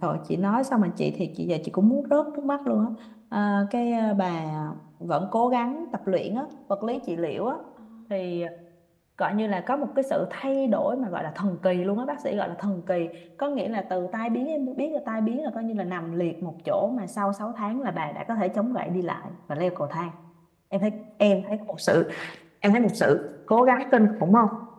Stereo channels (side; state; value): both; identical; correlation 1.00